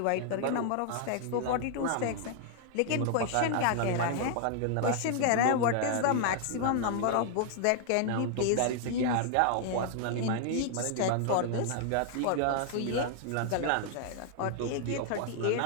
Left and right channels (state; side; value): different; both; correlation 0.00